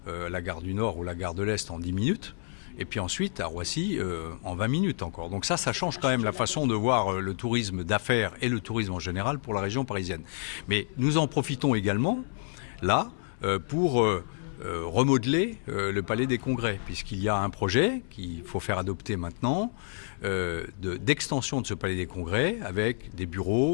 la gare du Nord ou la gare de l'Est en 10 minutes, et puis ensuite à Roissy en 20 minutes encore. Donc ça change quand même la façon de voir le tourisme d'affaires et le tourisme en général pour la région parisienne. Mais nous en profitons également, là, pour remodeler le Palais des Congrès, puisqu'il y a un projet qu'il faut faire adopter maintenant, d'extension de ce Palais des Congrès avec des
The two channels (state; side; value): silent; right; 59 dB below the other